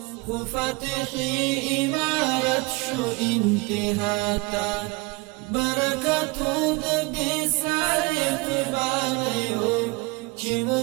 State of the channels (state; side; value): quieter; left; 26.2 dB